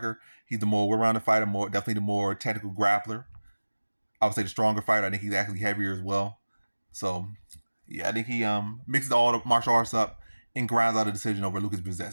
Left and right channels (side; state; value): both; inverted; correlation -1.00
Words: He's the more well-rounded fighter, definitely the more technical grappler. I would say the stronger fighter. I think he's actually heavier as well. So yeah, I think he mixes all the martial arts up and grinds out a decision over